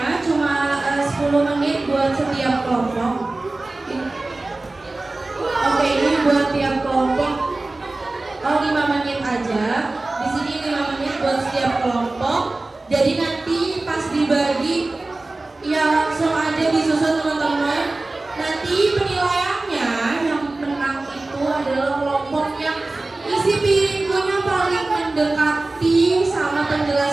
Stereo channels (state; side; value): quieter; left; 3.1 dB